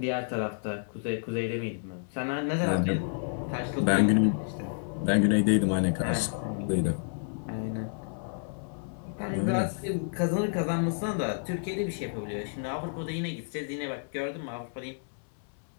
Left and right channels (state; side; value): silent; right; 58 dB below the other